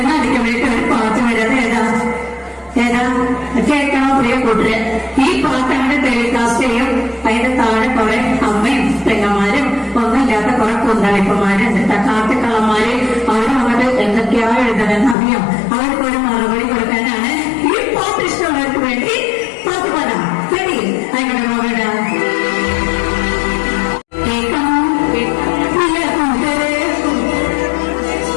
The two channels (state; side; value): drops out; right; at 15.2 s